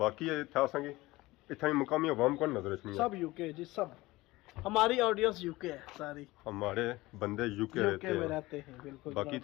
बाकी था संगी इतना मुकामी अवाम को नजर रखनी सब यूके जी सब हमारी ऑडियंस यूके है सारी हमारे बंदे यूके में रहते हैं बिल्कुल। बाकी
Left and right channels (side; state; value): right; quieter; 19.7 dB